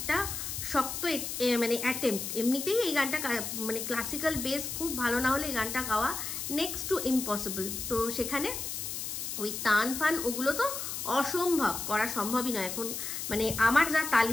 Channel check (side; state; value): left; noise; hiss, 5 dB below the sound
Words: শক্ত মানে অ্যাটেম্প্ট। এমনিতেই এই গানটা মানে ক্লাসিক্যাল বেস খুব ভালো না হলে এই গানটা গাওয়া নেক্সট টু ইম্পসিবল। তো সেখানে ওই তান ফান ওগুলো তো অসম্ভব, করা সম্ভবই নয় এখন, মানে আমার যা